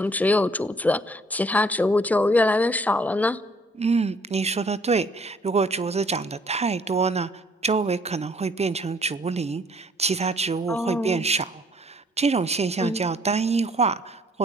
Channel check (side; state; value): both; normal; correlation 0.61